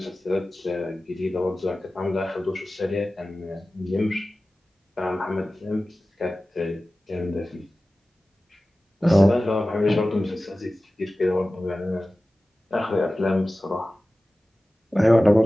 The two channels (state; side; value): normal; both; correlation 0.96